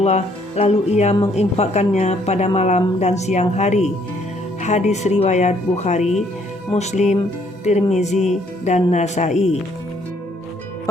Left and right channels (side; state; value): both; normal; correlation 0.66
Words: lalu ia menginfakkannya pada malam dan siang hari." Hadis riwayat Bukhari, Muslim, Tirmizi, dan Nasai.